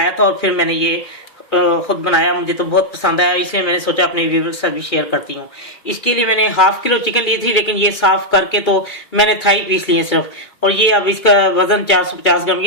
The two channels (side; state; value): right; late; 2.4 ms